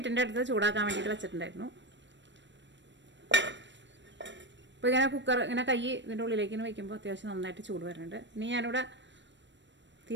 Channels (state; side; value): late; left; 0.53 ms